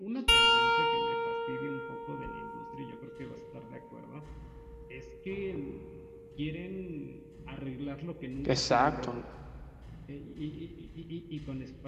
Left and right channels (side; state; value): both; identical; correlation 1.00